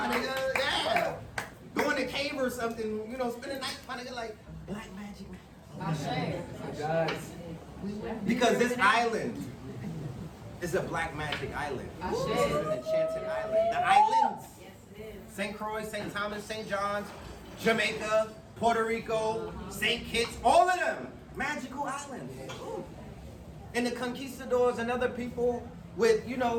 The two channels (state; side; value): identical; both; correlation 1.00